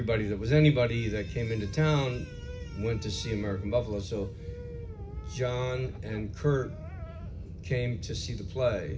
that came into town went to see American Buffalo. So John and Kurt came to see the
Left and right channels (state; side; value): identical; both; correlation 1.00